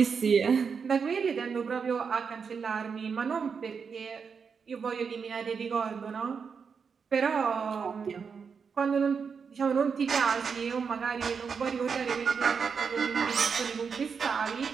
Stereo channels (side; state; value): left; quieter; 6.0 dB